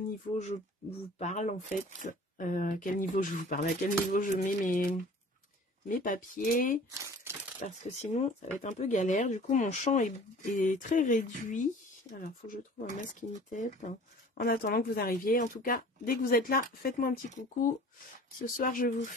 niveau je vous parle en fait. À quel niveau je vous parle, à quel niveau je mets mes papiers. Parce que sinon, ça va être un peu galère. Du coup, mon champ est très réduit. Alors, il faut que je trouve un masking tape. En attendant que vous arriviez. En tout cas, dès que vous êtes là, faites-moi un petit coucou. Ce soir, je vous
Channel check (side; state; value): both; normal; correlation 0.46